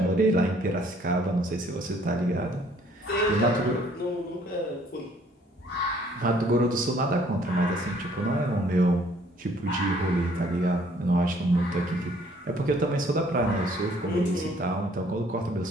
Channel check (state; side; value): normal; both; correlation 0.61